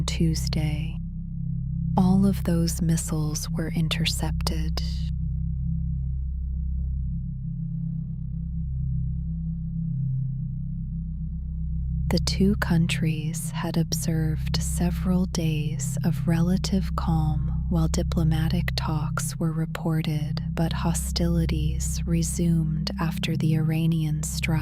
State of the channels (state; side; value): identical; both; correlation 1.00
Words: Tuesday. All of those missiles were intercepted. The 2 countries had observed several days of relative calm while diplomatic talks were reported, but hostilities resumed after the Iranian